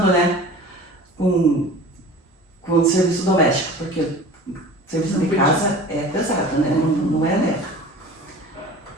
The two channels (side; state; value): both; normal; correlation 0.41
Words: né, com o serviço doméstico, porque o serviço de casa é pesado, né, não é leve.